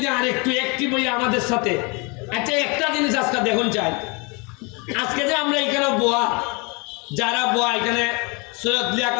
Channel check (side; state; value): right; quieter; 30.2 dB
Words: আরেকটু অ্যাক্টিভ হই আমাদের সাথে। আচ্ছা, একটা জিনিস আজকে দেখুন চাই, আজকে যে আমরা এখানে বোয়া, যারা বোয়া এখানে সৈয়দ